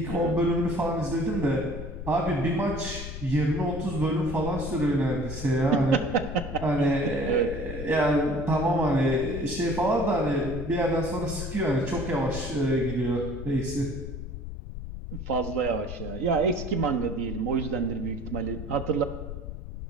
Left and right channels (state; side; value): noise; left; rumble, 8 dB below the sound